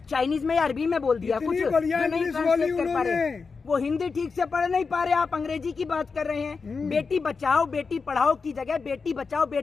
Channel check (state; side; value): quieter; right; 4.8 dB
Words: चाइनीज में या अरबी में बोल दिया कुछ इतनी बढ़िया जो नहीं इंग्लिश ट्रांसलेट बोली कर पा रहे। उन्होंने। वो हिंदी ठीक से पढ़ नहीं पा रहे, आप अंग्रेजी की बात कर रहे हैं। बेटी बचाओ बेटी पढ़ाओ की जगह बेटी बचाओ